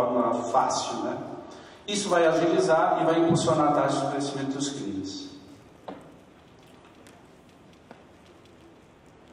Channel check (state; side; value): identical; both; correlation 1.00